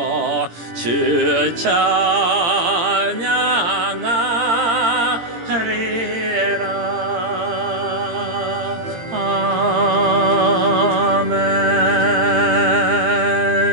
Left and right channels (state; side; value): late; left; 18 ms